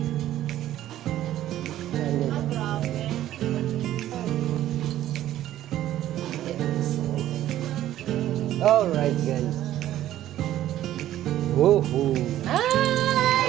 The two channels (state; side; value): quieter; left; 13.0 dB